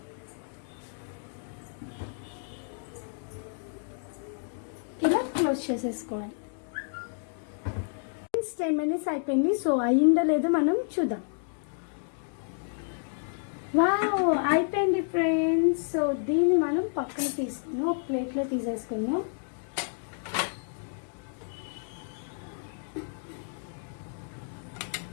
ఇలా క్లోజ్ చేసేసుకోవాలి. 10 minutes అయిపోయింది. సో అయిందో లేదో మనం చూద్దాం. వావ్, అయిపోయింది ఫ్రెండ్స్. సో దీన్ని మనం పక్కన తీసుకున్నాం, ఒక ప్లేట్లో తీసేసుకున్నాం.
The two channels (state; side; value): silent; right; 58 dB below the other